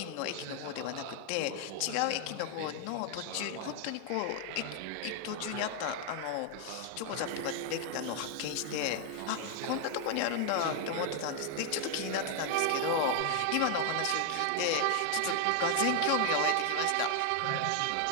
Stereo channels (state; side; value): different; both; correlation 0.00